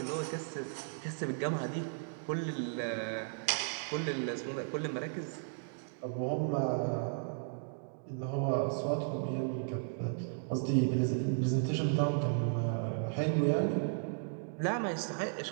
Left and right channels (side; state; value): left; silent; digital silence